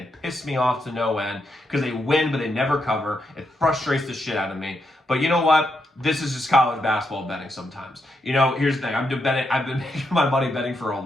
piss me off to no end because they win, but they never cover. It frustrates the shit out of me. But you know what? This is just college basketball betting sometimes. Here's the thing. I've been making my money betting for a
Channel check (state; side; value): normal; both; correlation 0.82